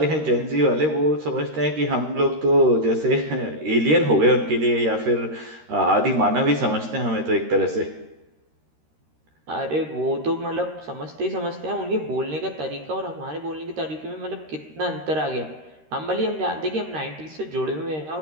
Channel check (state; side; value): late; left; 13 ms